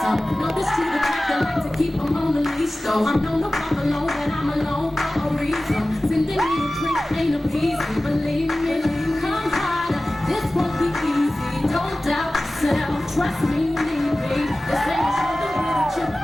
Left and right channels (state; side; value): normal; both; correlation 0.97